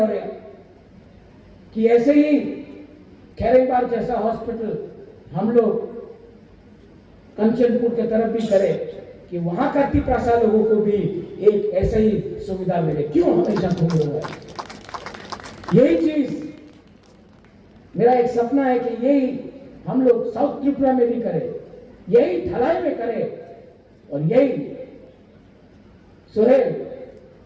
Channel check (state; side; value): identical; both; correlation 1.00